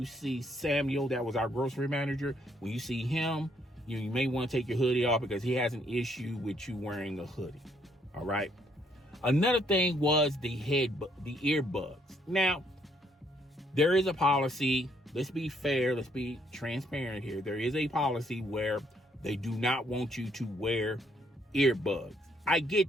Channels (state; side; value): normal; both; correlation 0.69